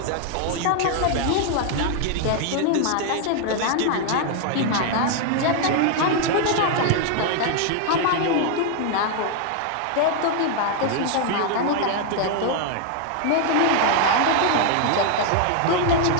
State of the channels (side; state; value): both; different; correlation 0.00